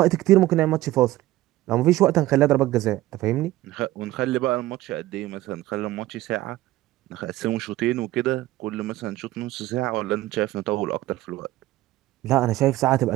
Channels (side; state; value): left; quieter; 16.3 dB